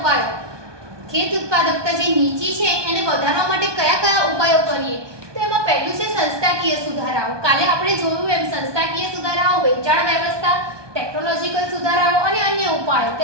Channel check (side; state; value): left; late; 1.2 ms